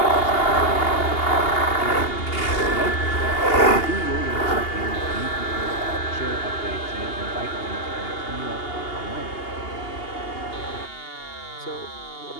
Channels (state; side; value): late; right; 2.8 ms